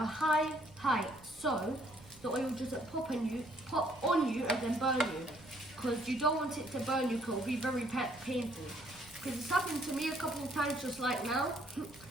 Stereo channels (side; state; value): right; noise; rumble, 24 dB below the sound